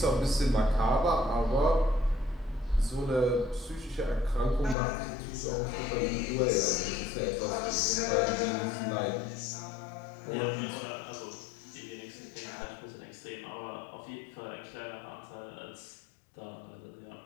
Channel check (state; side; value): drops out; right; at 4.8 s